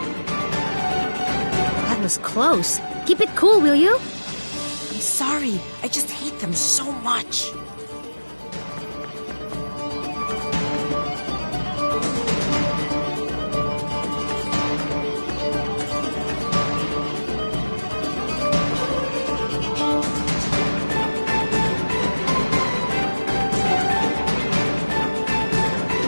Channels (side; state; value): both; inverted; correlation -1.00